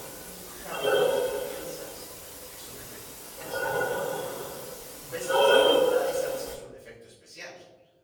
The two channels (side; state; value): both; identical; correlation 1.00